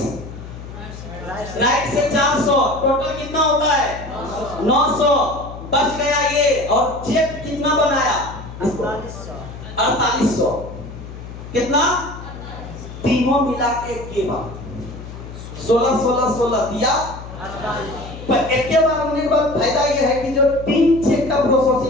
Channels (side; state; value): left; noise; hum, 12 dB below the sound